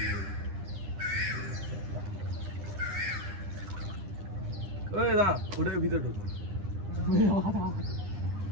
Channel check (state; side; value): late; left; 9.9 ms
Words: ওই না ওটার ভিতরে ঢোক।